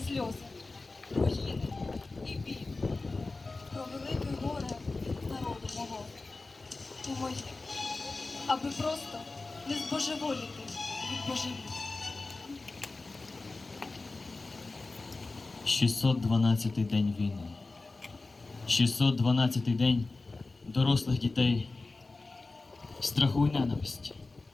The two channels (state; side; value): quieter; right; 3.5 dB